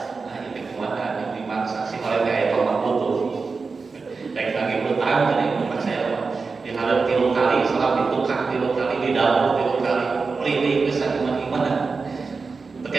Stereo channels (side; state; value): left; quieter; 4.5 dB